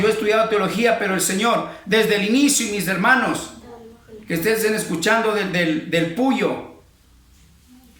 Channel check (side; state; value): both; identical; correlation 1.00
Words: he estudiado teología, pero el Señor, desde el inicio, y mis hermanos que estén escuchando del Puyo,